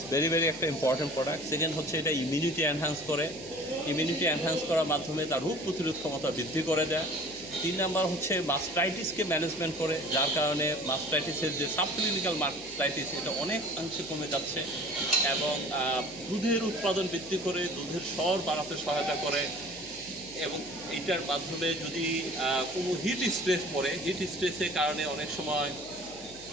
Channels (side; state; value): left; noise; hum, 23 dB below the sound